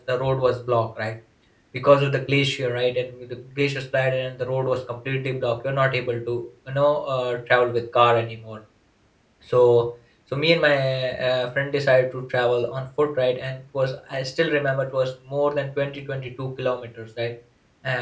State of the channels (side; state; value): both; identical; correlation 1.00